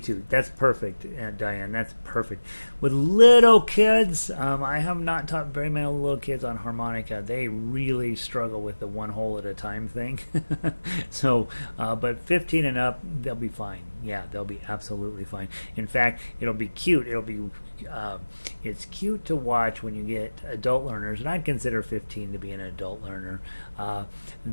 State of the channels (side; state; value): both; inverted; correlation -1.00